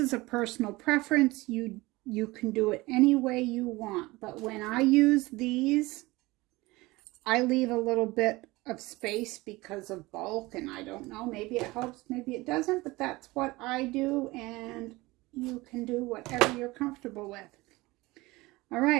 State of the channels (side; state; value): left; quieter; 21.2 dB